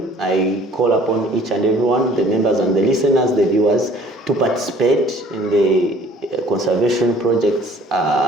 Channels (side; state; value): both; normal; correlation 0.54